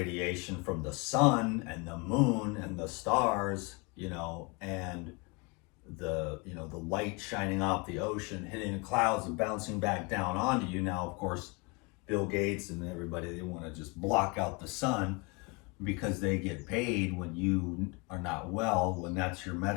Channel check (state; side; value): quieter; right; 29.1 dB